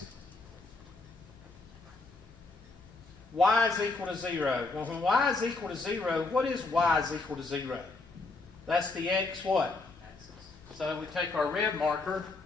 Y is equal to 0. Well, when y is equal to 0, what is y is equal to 0? That's the x what? Axis. So we take our red marker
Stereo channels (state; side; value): quieter; right; 3.6 dB